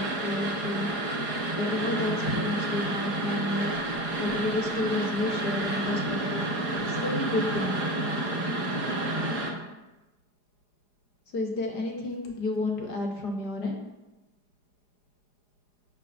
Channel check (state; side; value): late; right; 4.9 ms